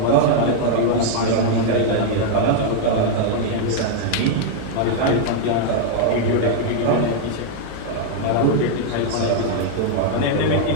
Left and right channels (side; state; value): both; different; correlation 0.00